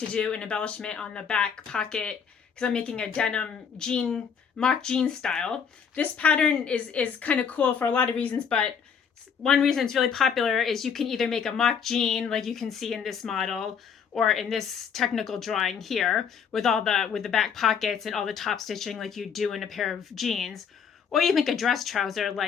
do an embellishment on the back pocket because I'm making a denim jean, mock jean style. This pattern is kind of cool for a lot of reasons, but one reason it's really popular is you can either make a mock jean like you can see in this model, or in this technical drawing here with the back pockets and all the top stitching like you do in a pair of jeans, or you make a dress trouser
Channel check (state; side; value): quieter; right; 6.9 dB